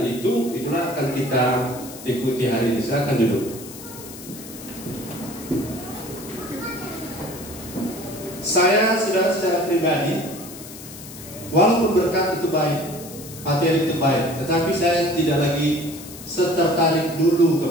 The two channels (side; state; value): left; noise; hiss, 15 dB below the sound